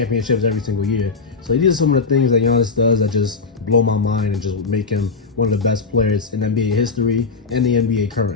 every single year. So these are some of the things that Giannis does that just blow my mind and just make him one of the best players in NBA history and the NBA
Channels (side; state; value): right; quieter; 4.6 dB